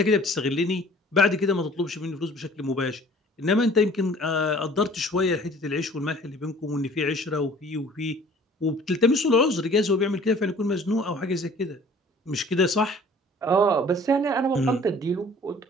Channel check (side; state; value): both; normal; correlation 0.51